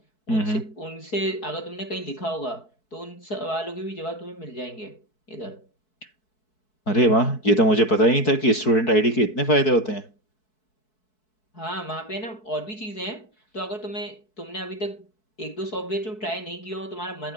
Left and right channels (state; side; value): late; right; 4.6 ms